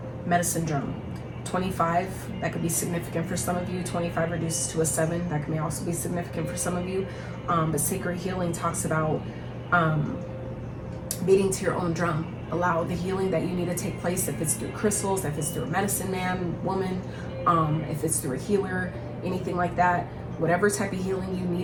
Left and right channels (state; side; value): identical; both; correlation 1.00